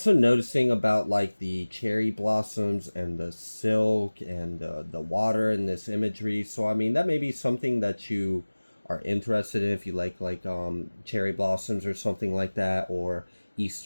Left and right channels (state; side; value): inverted; both; correlation -1.00